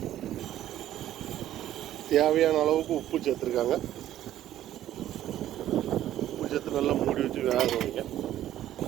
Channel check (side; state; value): left; quieter; 12.6 dB